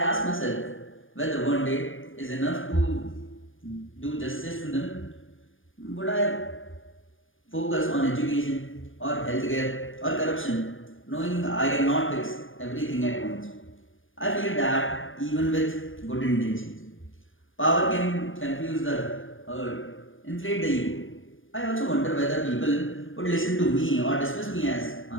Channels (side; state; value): right; late; 0.58 ms